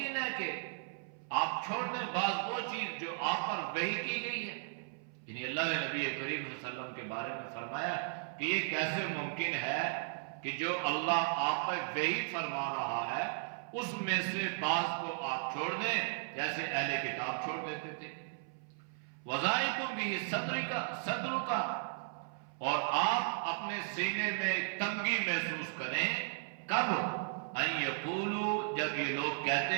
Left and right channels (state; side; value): silent; left; 54 dB below the other